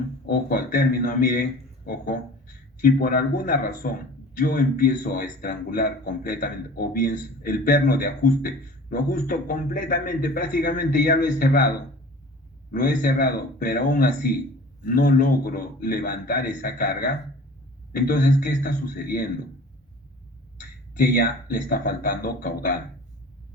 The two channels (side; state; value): both; normal; correlation 0.43